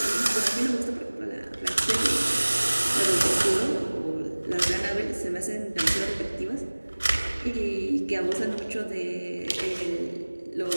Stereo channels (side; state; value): both; inverted; correlation -1.00